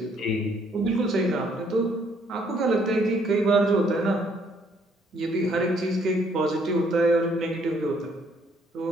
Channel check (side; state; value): both; normal; correlation 0.66